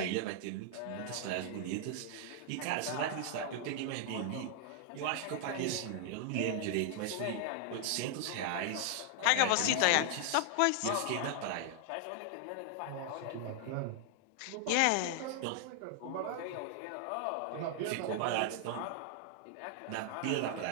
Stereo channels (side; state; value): both; different; correlation 0.00